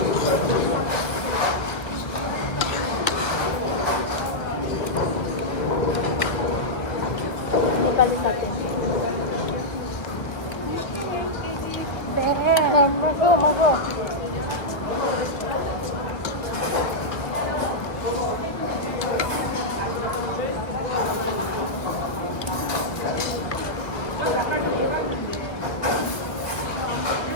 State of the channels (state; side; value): late; right; 1.5 ms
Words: नेपाली साथी मगो